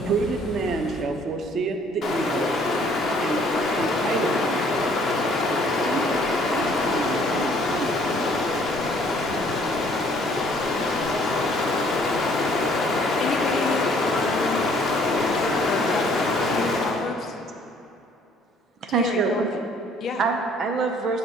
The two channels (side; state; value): both; normal; correlation 0.60